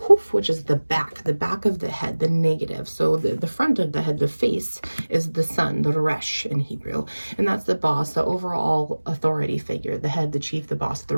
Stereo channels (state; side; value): inverted; both; correlation -1.00